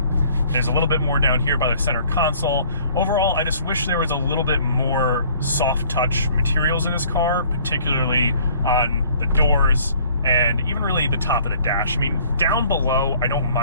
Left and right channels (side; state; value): both; inverted; correlation -0.56